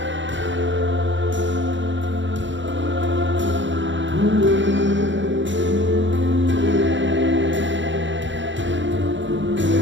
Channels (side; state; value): left; late; 0.54 ms